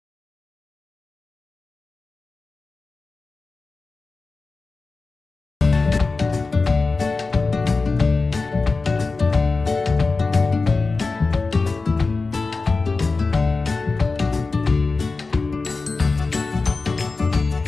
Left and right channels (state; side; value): quieter; right; 3.9 dB